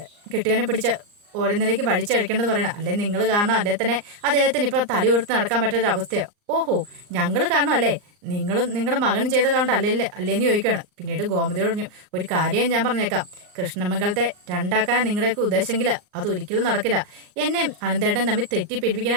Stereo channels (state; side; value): late; left; 39 ms